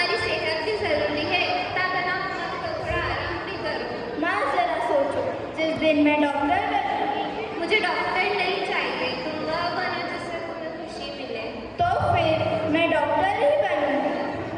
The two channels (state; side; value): identical; both; correlation 1.00